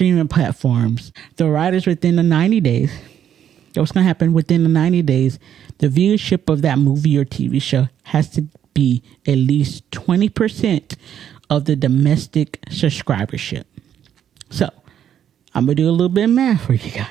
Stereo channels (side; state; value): left; quieter; 9.6 dB